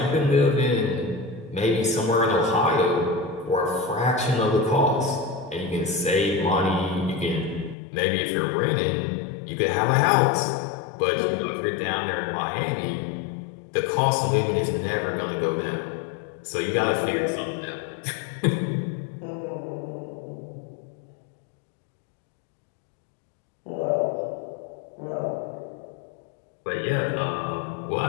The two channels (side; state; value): right; drops out; at 7.8 s